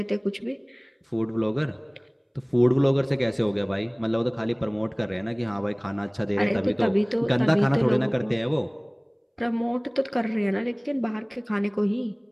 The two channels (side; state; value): both; identical; correlation 1.00